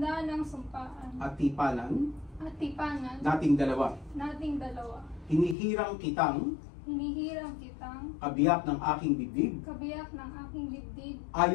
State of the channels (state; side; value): drops out; right; at 5.6 s